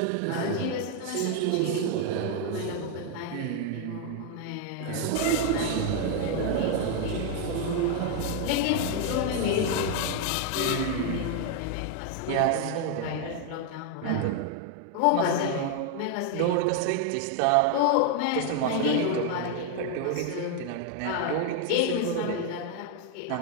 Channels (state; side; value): different; both; correlation 0.01